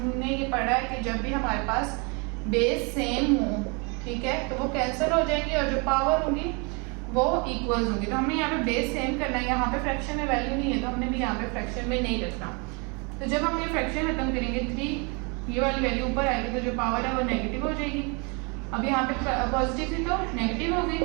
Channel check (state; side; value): quieter; left; 32.0 dB